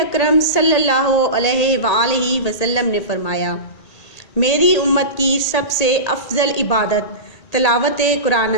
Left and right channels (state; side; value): late; right; 1.8 ms